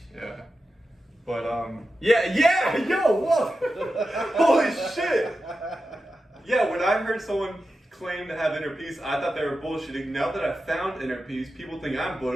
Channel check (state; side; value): normal; both; correlation 0.91